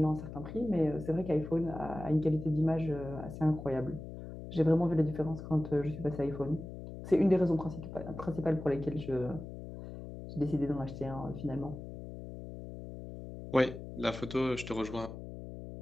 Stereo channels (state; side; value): noise; left; hum, 11 dB below the sound